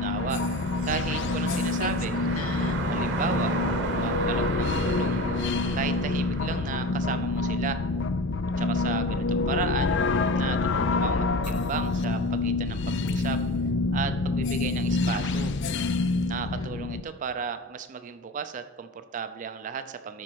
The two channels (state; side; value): normal; both; correlation 0.32